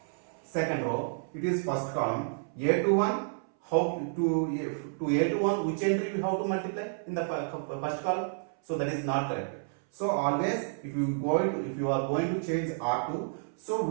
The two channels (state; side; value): silent; left; 58 dB below the other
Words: second row. It is first column. A21. How to A21? Which entry we have to multiply in the first column? So that is not correct. So always, if you are going to change R2, so